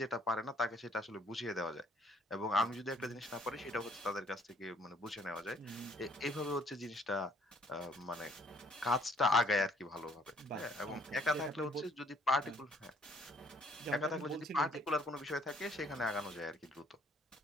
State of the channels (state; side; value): normal; both; correlation 0.62